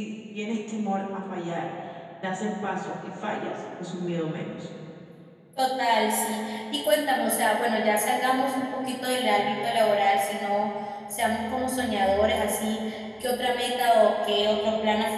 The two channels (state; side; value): identical; both; correlation 1.00